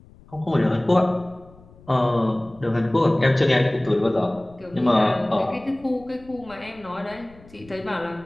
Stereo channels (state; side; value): noise; left; rumble, 24 dB below the sound